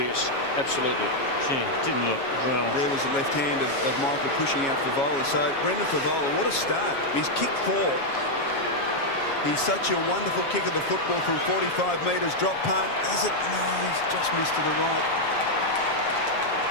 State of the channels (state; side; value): late; right; 7.3 ms